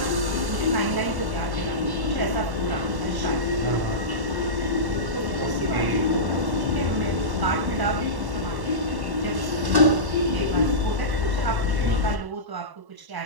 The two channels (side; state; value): left; late; 1.0 ms